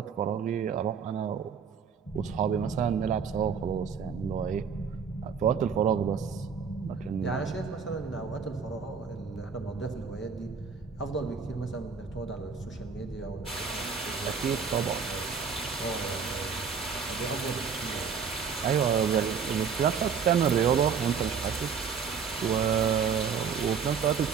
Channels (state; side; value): quieter; left; 6.4 dB